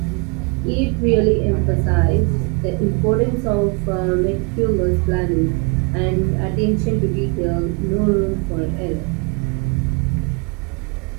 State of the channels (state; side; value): quieter; left; 32.6 dB